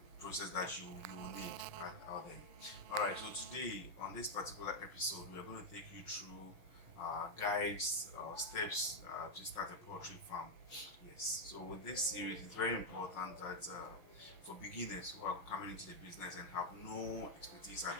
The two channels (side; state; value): right; late; 5.6 ms